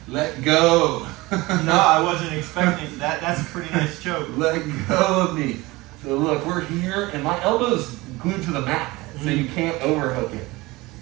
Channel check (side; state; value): left; quieter; 21.3 dB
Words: let go. No, I wasn't expecting that. That's a pretty nice choke. Let go of me. So look, we're here, and my elbow's glued to the mat, so you can't overhook it.